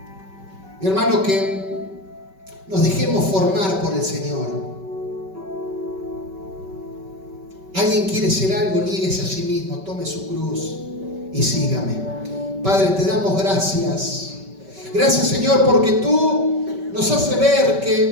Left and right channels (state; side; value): late; left; 5.2 ms